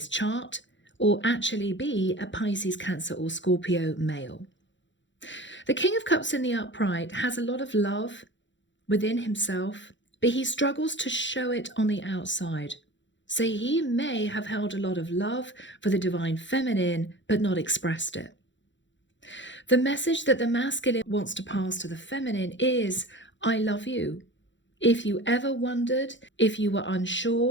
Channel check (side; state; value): right; late; 0.54 ms